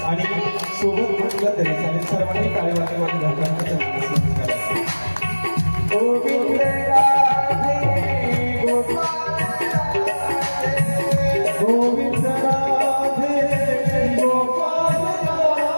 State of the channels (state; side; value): inverted; both; correlation -1.00